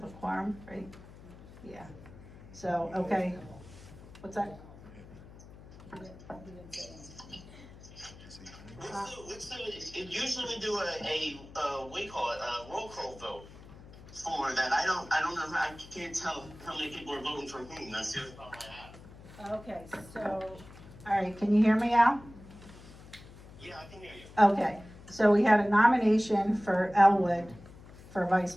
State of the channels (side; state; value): left; noise; hum, 18 dB below the sound